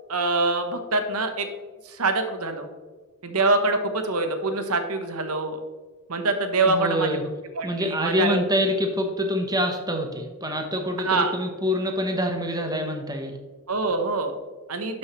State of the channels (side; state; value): both; normal; correlation 0.00